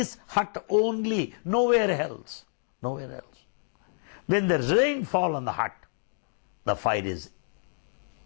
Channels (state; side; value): silent; right; digital silence